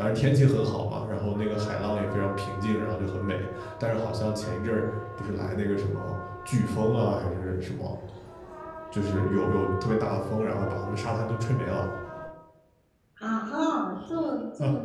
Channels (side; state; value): both; identical; correlation 1.00